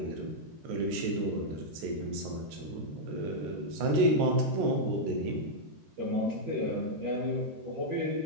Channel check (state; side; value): late; left; 14 ms